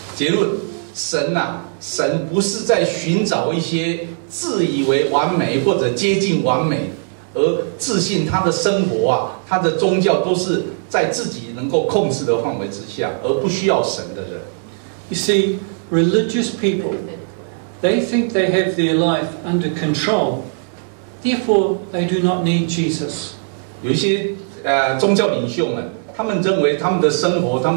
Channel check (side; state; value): left; silent; digital silence